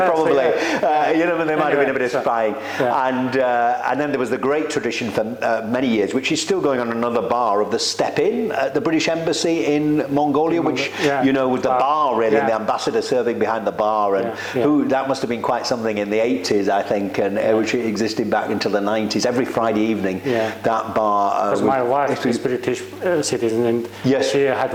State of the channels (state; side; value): identical; both; correlation 1.00